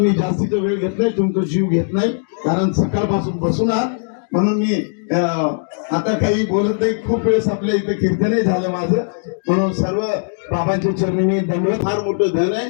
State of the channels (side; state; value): right; silent; digital silence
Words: जास्तीचा वेळ घेत नाही, तुमचा जीव घेत नाही, कारण सकाळपासून बसून आहात. म्हणून मी आता काही बोलत नाही. खूप वेळेस आपल्या इथे कीर्तनही झालं माझं. म्हणून सर्व बाबांच्या चरणी मी दंडवत. फार मोठं धन आहे.